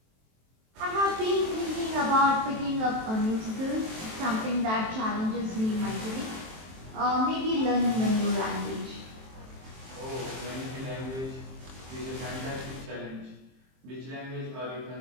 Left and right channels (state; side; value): late; left; 23 ms